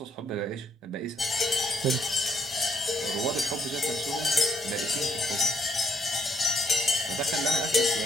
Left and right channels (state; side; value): normal; both; correlation 0.72